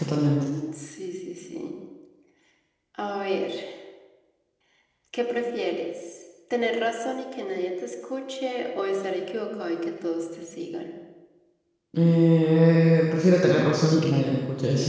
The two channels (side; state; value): both; identical; correlation 1.00